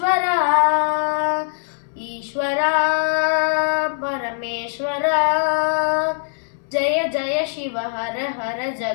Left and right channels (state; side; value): silent; right; 65 dB below the other